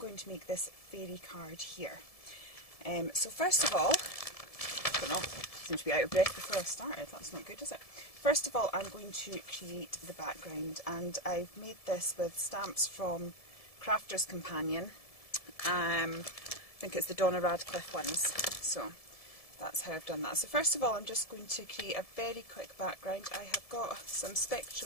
to make this fairy card here. So first of all, I don't know, I seem to be out of breath before I started, that's not good, is it? First of all, I'm going to create the background, and I've made this with stamps from Crafter's Companion. I think it's the Donna Radcliff ones, so that's how I've done that. So first of all, I'm just going to create a very quick background. I have got some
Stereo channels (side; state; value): right; late; 1.7 ms